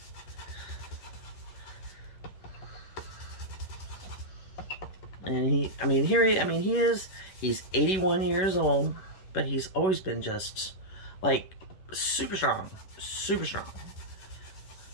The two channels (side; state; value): right; late; 11 ms